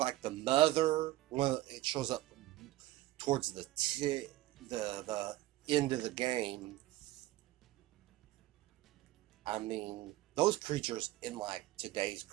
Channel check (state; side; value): quieter; left; 16.4 dB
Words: the Mother when it shows up towards the end of the game. I mean, those creatures in like today's